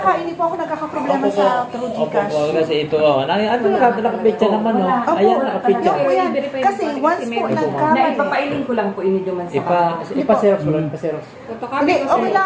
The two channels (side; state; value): both; identical; correlation 1.00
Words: hindi po ako nagkakaproblema sa True Gcash. Opo, kasi ito, ano nakapitsa naman, no? Wala. Opo, Ayan, nakapitsa. yun po yan. I-verify Kasi mo pa, once kasi po meron po. nagkamali. Na ipapailing ko lang po ini duman sa Ipa-xerox mo lang, ipa-xerox. Photocopy Hindi, ko okay sir.